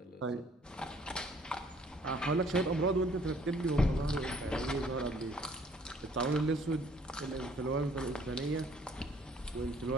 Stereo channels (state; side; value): normal; both; correlation 0.60